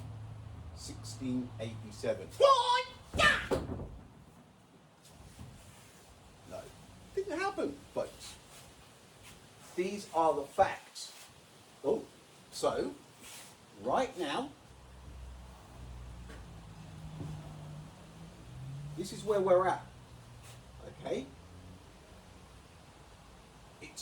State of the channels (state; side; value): identical; both; correlation 1.00